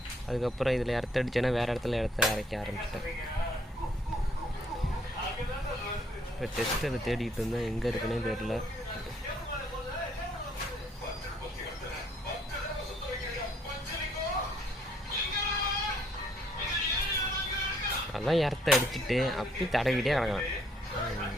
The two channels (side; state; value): both; normal; correlation 0.66